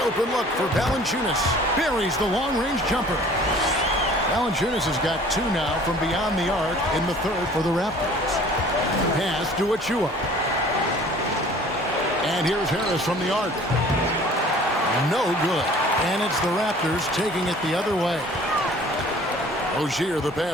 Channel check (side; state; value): both; normal; correlation 0.50